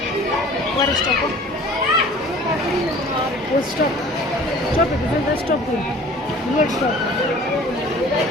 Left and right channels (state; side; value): normal; both; correlation 0.47